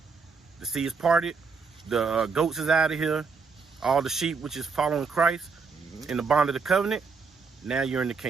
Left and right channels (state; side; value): quieter; left; 5.0 dB